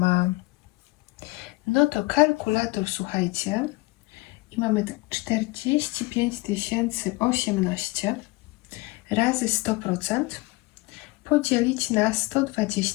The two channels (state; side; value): quieter; right; 22.5 dB